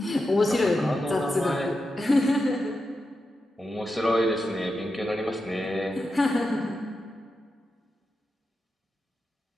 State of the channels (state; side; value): normal; both; correlation 0.89